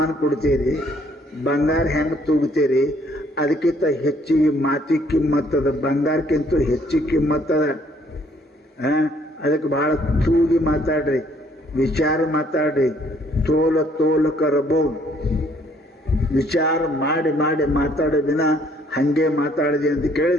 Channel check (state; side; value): normal; both; correlation 0.64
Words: ಕೊಡ್ತೀರಿ, ಬಂಗಾರ ಹೆಂಗ ತೂಗ್ತೀರಿ, ಅದಕ್ಕಿಂತ ಹೆಚ್ಚಿಗೆ ಮಾತಿ ಕಿಮ್ಮತ್ತದ, ಬಂಗಾರಕ್ಕಿಂತ ಹೆಚ್ಚಿಗೆ ಕಿಮ್ಮತ್ತದ. ಅದಕ್ಕೆ ಬಹಳ ತೂಗಿ ಮಾತಾಡ್ರಿ, ವಿಚಾರ ಮಾತಾಡ್ರಿ. ತೋಲ ಕರಬಹುದು. ವಿಚಾರ ಮಾಡಿ ಮಾತಾಡೋ ದಿನ ಹಂಗೆ ಮಾತಾಡಿದೆ ಅಂತ